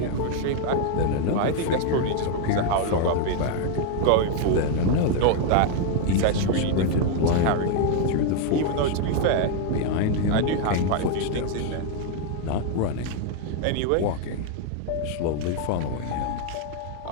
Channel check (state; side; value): different; both; correlation 0.00